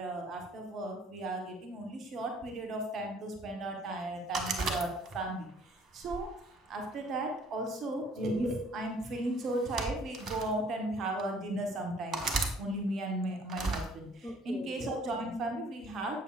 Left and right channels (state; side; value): normal; both; correlation 0.57